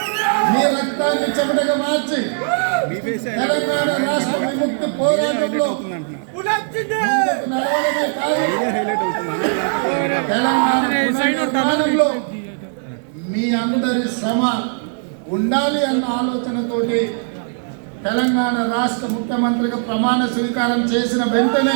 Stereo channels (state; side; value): silent; left; digital silence